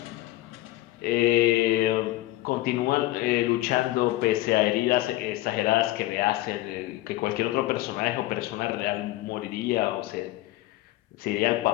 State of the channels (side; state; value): right; quieter; 17.2 dB